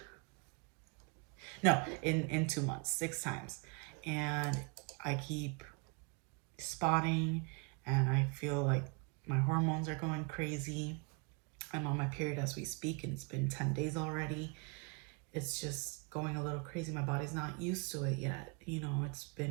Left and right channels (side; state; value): left; quieter; 33.1 dB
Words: No, in 2 months, 6 times. And I keep spotting and I feel like my hormones are going crazy. I'm on my period as we speak and it's been 10 days already. It's just going a little crazy. My body's not used to it yet. You know,